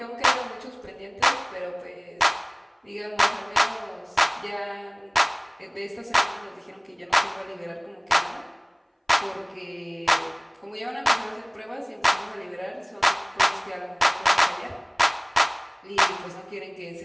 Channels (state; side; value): identical; both; correlation 1.00